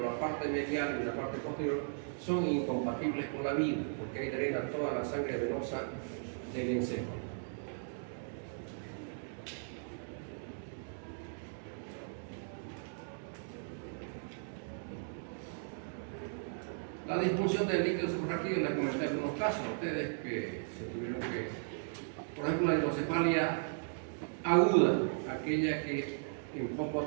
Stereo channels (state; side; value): silent; left; digital silence